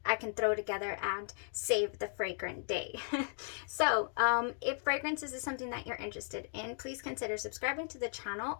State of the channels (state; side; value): silent; right; 54 dB below the other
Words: I can throw together and save the fragrant day. So if fragrances is something that you're interested in, please consider subscribing to the